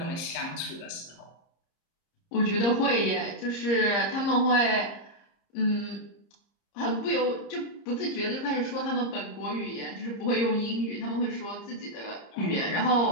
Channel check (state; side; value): late; right; 30 ms